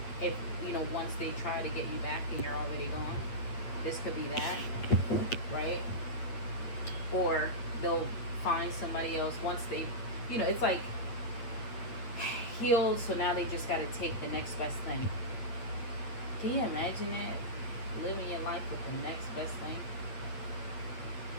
If, you know, once they try to get you back and you're already gone, this could be that, right? Or they'll find somebody else once they, you know, it's like healed, so now they just got to take the next best thing. Can you imagine that? Living your life with the next best thing?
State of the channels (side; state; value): right; late; 8.5 ms